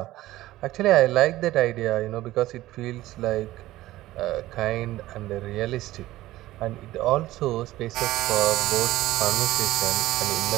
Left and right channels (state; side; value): quieter; left; 16.2 dB